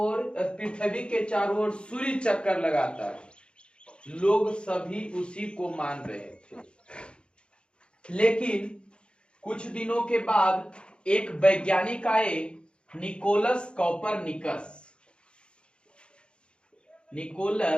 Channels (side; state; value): right; late; 0.055 ms